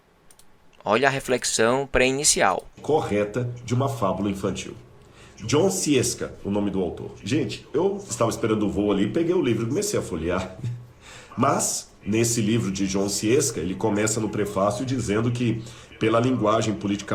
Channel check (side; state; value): both; identical; correlation 1.00